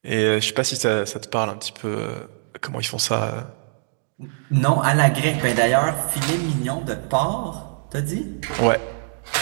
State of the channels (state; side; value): silent; left; digital silence